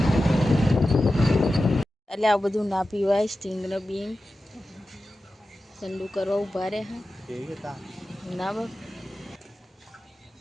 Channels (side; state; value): both; normal; correlation 0.93